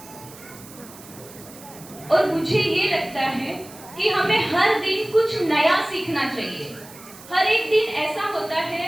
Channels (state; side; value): noise; right; hiss, 19 dB below the sound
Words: और मुझे ये लगता है कि हमें हर दिन कुछ नया सीखना चाहिए. हर एक दिन ऐसा होता